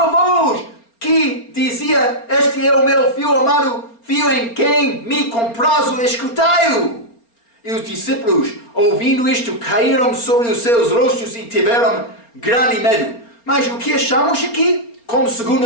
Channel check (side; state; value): right; late; 4.3 ms